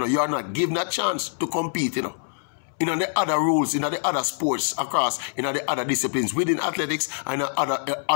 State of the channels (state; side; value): silent; right; 62 dB below the other